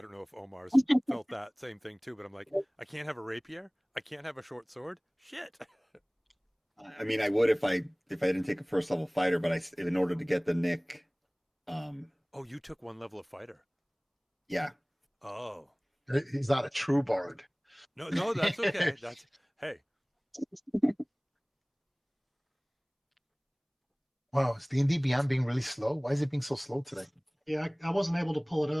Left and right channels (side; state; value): both; identical; correlation 1.00